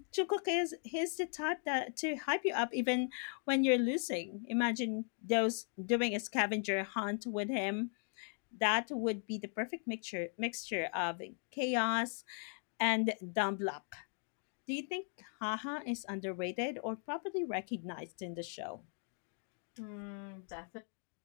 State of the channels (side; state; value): right; silent; 52 dB below the other